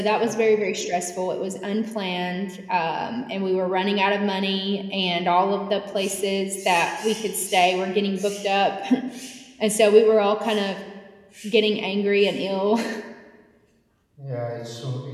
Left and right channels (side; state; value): both; identical; correlation 1.00